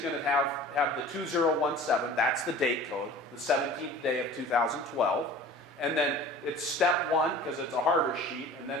to have the 2017, that's the date code, the 17th day of 2012, and then it's step 1 because it's a harvest sheet, and then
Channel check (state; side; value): normal; both; correlation 0.43